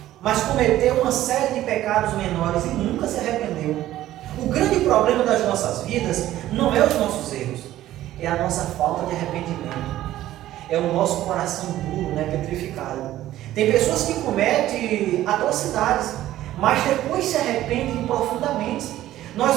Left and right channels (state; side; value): quieter; left; 14.0 dB